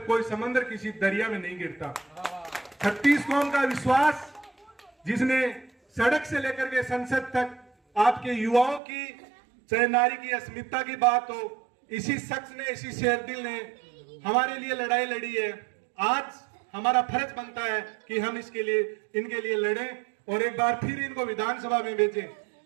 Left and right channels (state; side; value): drops out; left; at 8.8 s